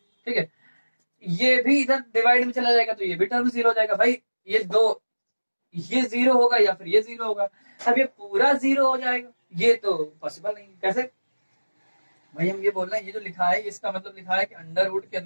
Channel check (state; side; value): inverted; both; correlation -1.00